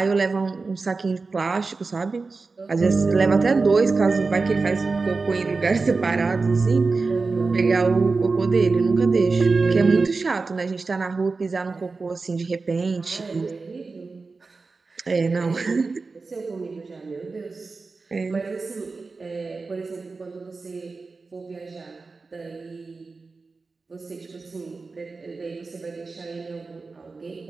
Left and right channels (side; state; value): left; quieter; 4.1 dB